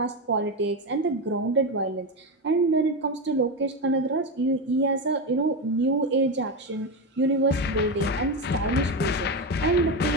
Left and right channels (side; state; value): both; normal; correlation 0.14